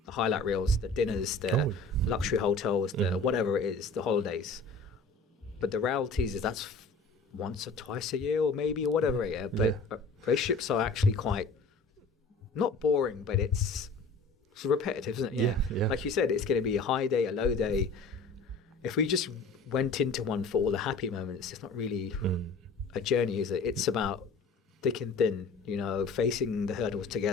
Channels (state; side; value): quieter; right; 3.6 dB